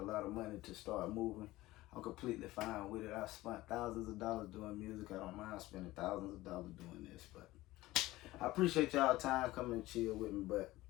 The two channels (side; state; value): right; quieter; 17.8 dB